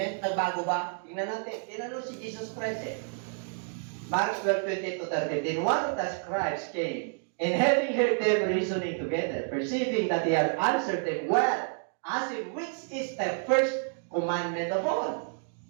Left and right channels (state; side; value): silent; left; 58 dB below the other